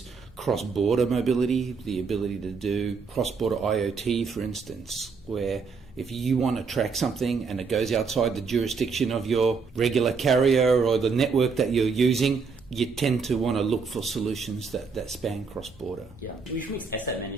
cross-border mobility, the ability to do cross-border IoT, for instance, where if you want to track something and it goes outside the jurisdiction of your regular carrier or the network that you're using, you tend to want to look for solutions that span cross-border. Yeah, which makes asset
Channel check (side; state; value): left; quieter; 5.1 dB